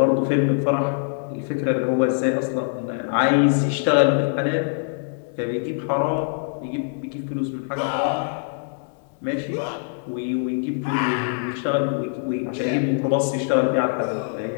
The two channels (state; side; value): silent; right; digital silence